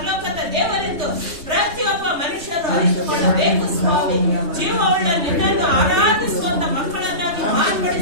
ದೇವರೆಂದು ಪ್ರತಿಯೊಬ್ಬ ಮನುಷ್ಯರು ಅರಿತುಕೊಳ್ಳಬೇಕು ಸ್ವಾಮಿ. ಜೀವವುಳ್ಳ ನಿನ್ನನ್ನು ಆರಾಧಿಸುವಂತ ಮಕ್ಕಳನ್ನಾಗಿ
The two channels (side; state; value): left; late; 3.2 ms